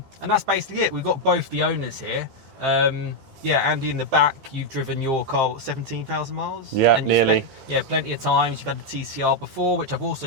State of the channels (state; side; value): late; left; 15 ms